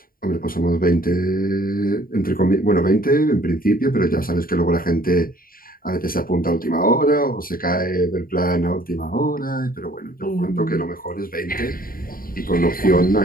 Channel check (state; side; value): late; right; 0.42 ms